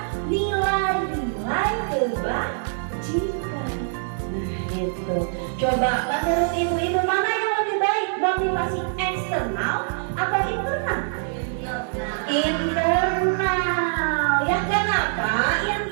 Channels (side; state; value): left; silent; digital silence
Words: nilai-nilai kebajikan. Nah itu. Coba menurut ibu-ibu mana yang lebih baik, motivasi eksternal atau internal? Internal. Ya kenapa